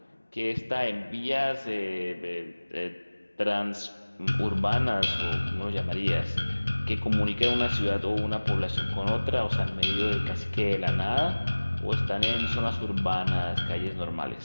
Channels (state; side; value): inverted; both; correlation -1.00